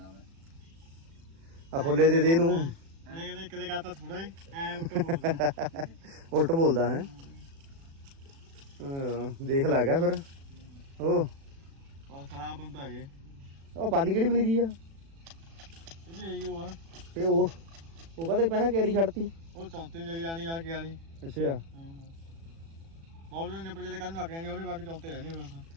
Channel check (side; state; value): left; late; 36 ms